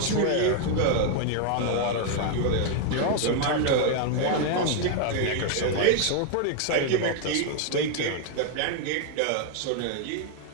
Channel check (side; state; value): both; different; correlation 0.00